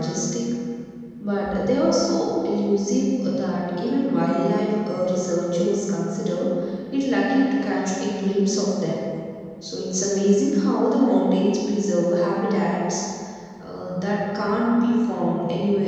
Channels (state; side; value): identical; both; correlation 1.00